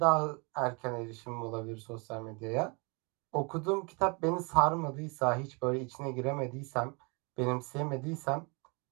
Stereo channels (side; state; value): left; quieter; 31.5 dB